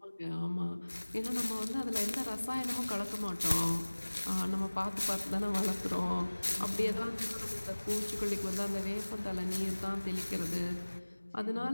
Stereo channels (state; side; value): inverted; both; correlation -1.00